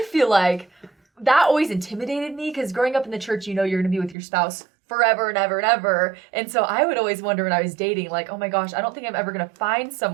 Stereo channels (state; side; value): drops out; left; at 4.2 s